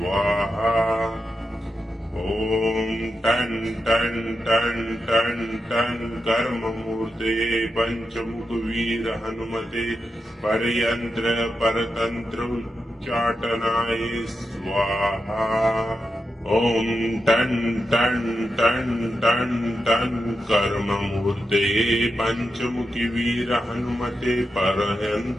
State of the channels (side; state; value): both; normal; correlation 0.88